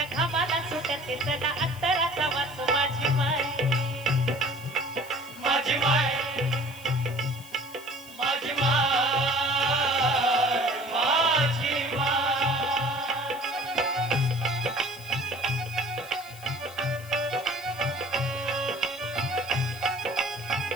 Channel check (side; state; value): left; noise; hiss, 19 dB below the sound